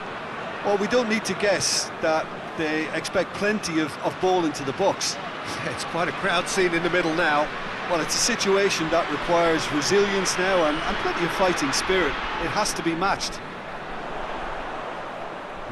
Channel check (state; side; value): identical; both; correlation 1.00